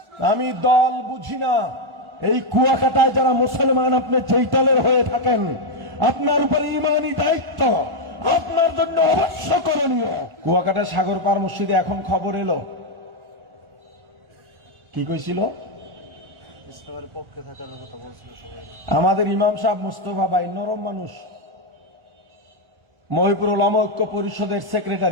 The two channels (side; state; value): left; late; 1.4 ms